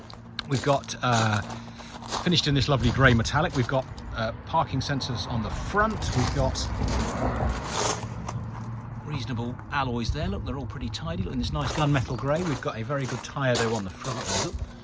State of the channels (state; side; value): identical; both; correlation 1.00